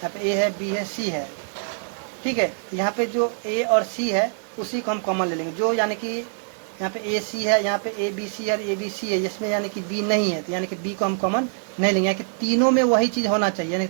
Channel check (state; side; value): silent; left; digital silence